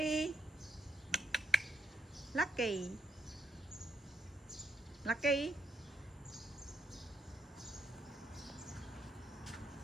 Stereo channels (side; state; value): both; normal; correlation 0.78